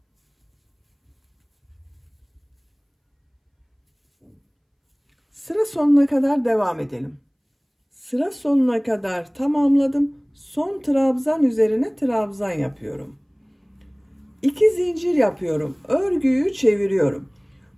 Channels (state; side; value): identical; both; correlation 1.00